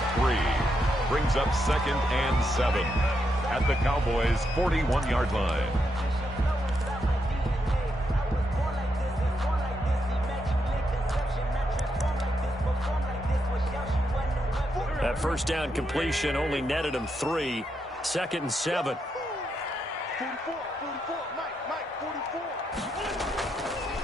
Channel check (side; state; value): both; normal; correlation 0.81